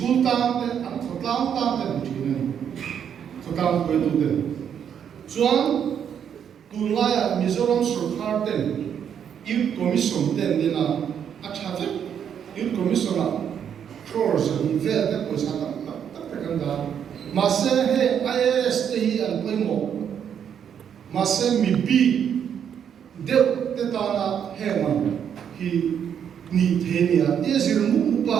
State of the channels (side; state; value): left; quieter; 8.4 dB